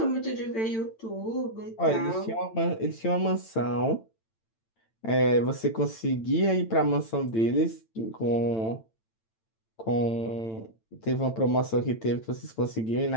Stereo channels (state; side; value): late; right; 8.9 ms